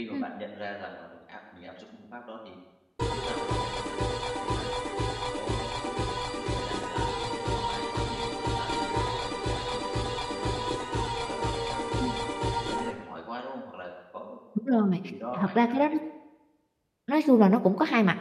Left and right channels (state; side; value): identical; both; correlation 1.00